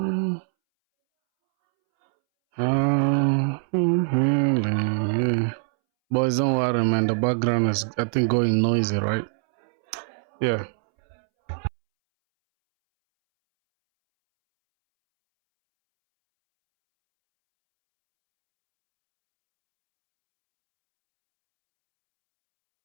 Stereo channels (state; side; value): silent; left; 63 dB below the other